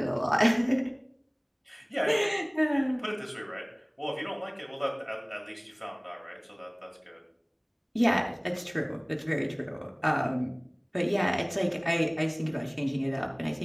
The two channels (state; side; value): identical; both; correlation 1.00